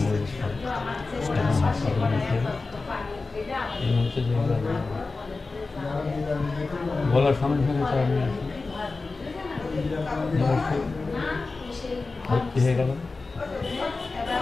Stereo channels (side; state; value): right; quieter; 3.8 dB